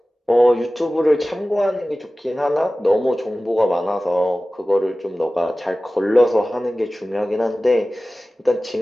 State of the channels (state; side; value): normal; both; correlation 0.97